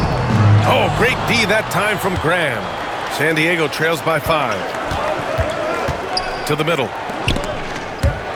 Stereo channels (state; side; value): identical; both; correlation 1.00